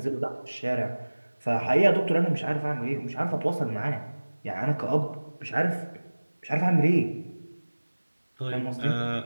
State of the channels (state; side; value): inverted; both; correlation -1.00